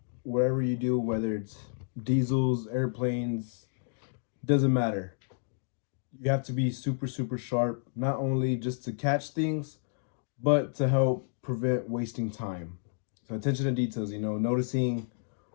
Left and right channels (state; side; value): silent; right; digital silence